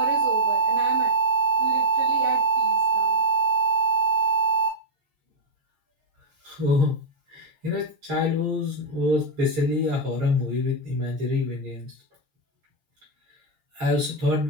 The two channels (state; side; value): late; left; 6.6 ms